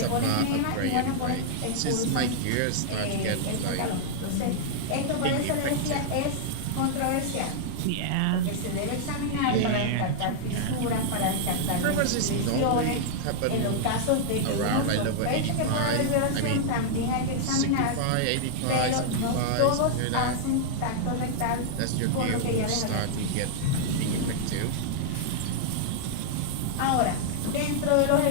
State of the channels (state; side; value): different; both; correlation -0.01